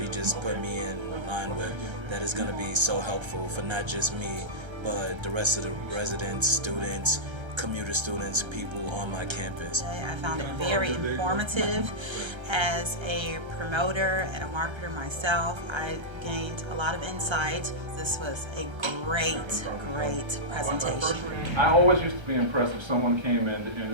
just put me in line with that is going to be so helpful for not just me, but the rest of the residents, students, commuter students, people on my campus. I found it very informative. As a promoter and a marketer myself, I gained a lot of insight. This was a great presentation. I always used to be impressed if someone came in to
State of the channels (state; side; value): late; left; 1.3 ms